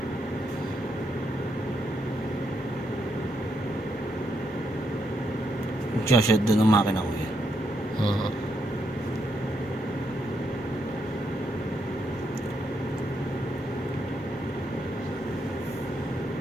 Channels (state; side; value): normal; both; correlation 0.78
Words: Magsashot doon ang makina ko eh. Uh,